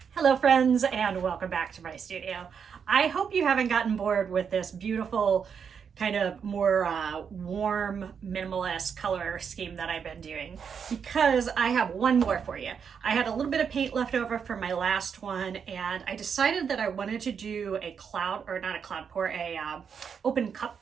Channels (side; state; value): left; quieter; 6.9 dB